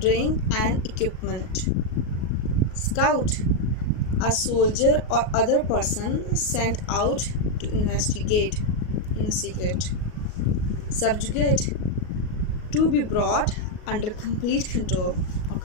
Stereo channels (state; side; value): late; right; 38 ms